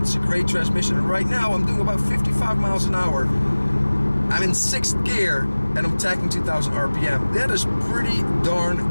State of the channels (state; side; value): inverted; both; correlation -1.00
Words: a great transmission, and right now I'm doing about 55 miles an hour. I'm in 6th gear, and I'm tacking 2,000 RPM. That is pretty